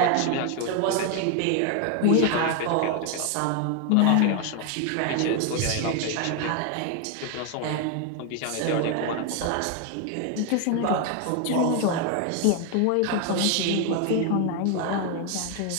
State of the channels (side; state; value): both; different; correlation 0.01